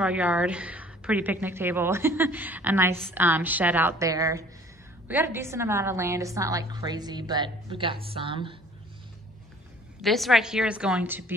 yard, pretty picnic table, a nice shed out there. We got a decent amount of land. It's not like crazy, but we got some. This right here is going to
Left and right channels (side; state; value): both; normal; correlation 0.52